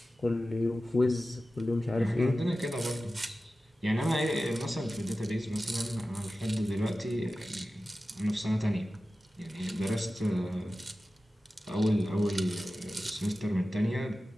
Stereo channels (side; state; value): both; normal; correlation 0.95